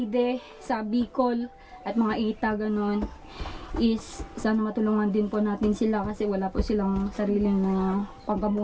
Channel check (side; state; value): both; identical; correlation 1.00